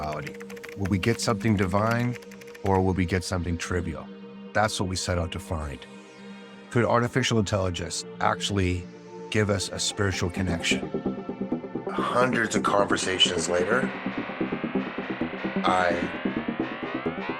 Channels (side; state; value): both; identical; correlation 1.00